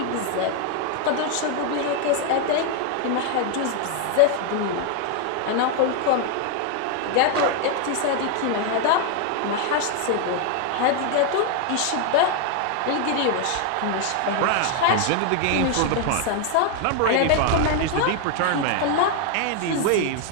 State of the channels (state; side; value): different; both; correlation 0.01